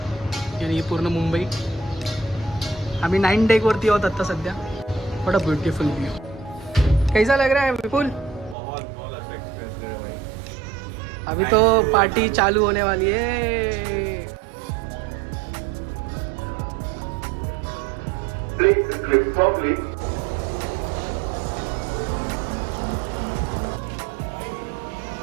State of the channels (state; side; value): drops out; left; at 8.6 s